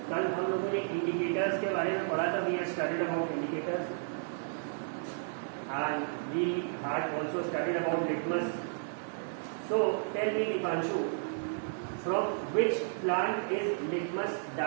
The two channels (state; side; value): silent; left; digital silence